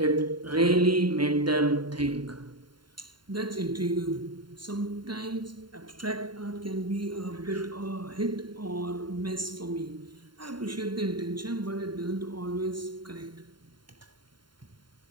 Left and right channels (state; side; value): late; left; 0.72 ms